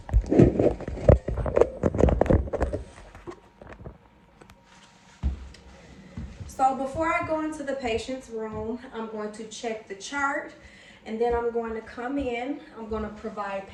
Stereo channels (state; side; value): identical; both; correlation 1.00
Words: So before I go into the patient's room, I'm going to check the chart, and then I'm going to come in. I'm going to provide